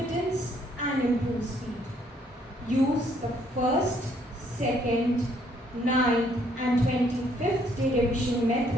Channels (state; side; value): normal; both; correlation 0.67